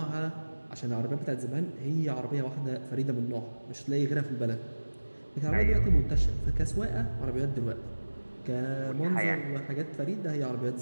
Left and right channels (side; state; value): both; inverted; correlation -1.00